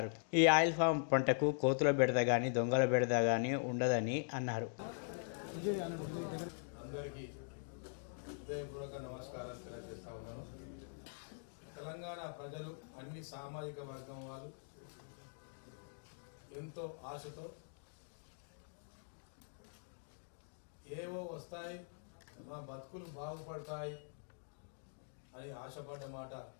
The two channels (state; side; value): silent; right; digital silence